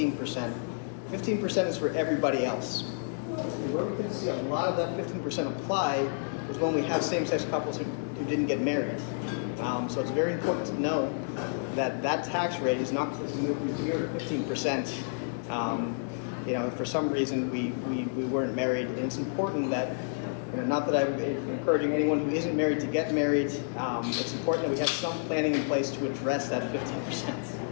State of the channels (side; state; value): right; silent; digital silence